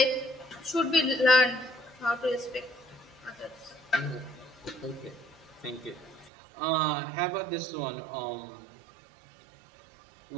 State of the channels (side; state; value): left; drops out; at 6.3 s